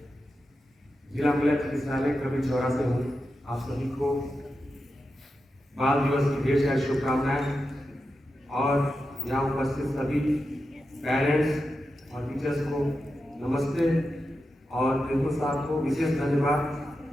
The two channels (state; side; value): normal; both; correlation 0.89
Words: जिला मिलन चिकित्सालय कभी चौरा से हूँ। आप सभी को बाल दिवस की ढेर सारी शुभकामनाएं और यहाँ उपस्थित सभी पेरेंट्स और टीचर्स को नमस्ते और बिल्कुल साहब को विशेष धन्यवाद